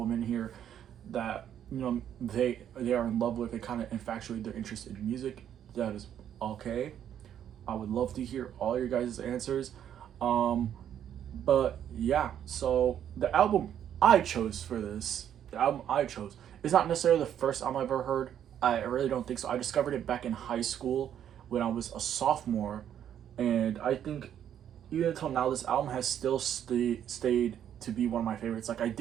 in here that they are in love with and kind of infatuate their interest in music, that is okay. I would love to hear all your guys' answers. Um, but yeah, so the album I chose, is not necessarily the first album I've ever heard. I really don't think so. I discovered it back in high school when I was a sophomore, and I think even until now, this album has still stayed to be one of my favorites. Like, I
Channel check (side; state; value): left; quieter; 9.8 dB